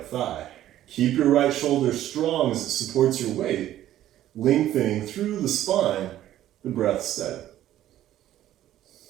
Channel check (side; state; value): left; quieter; 12.8 dB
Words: thigh. Keep your right shoulder strong as it supports your weight, lengthening through the spine the breath steady.